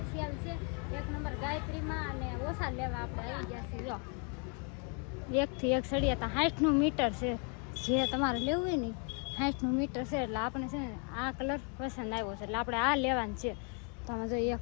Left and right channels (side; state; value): right; quieter; 37.7 dB